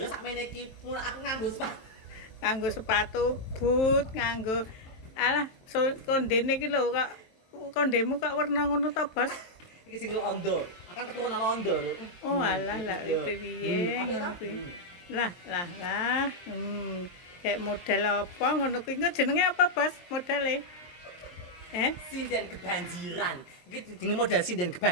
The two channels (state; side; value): late; right; 23 ms